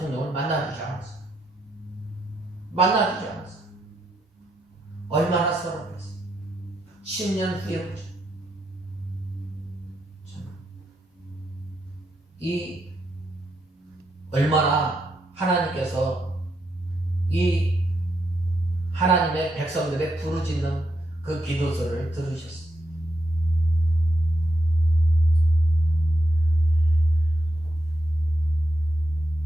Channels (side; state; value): both; normal; correlation 0.81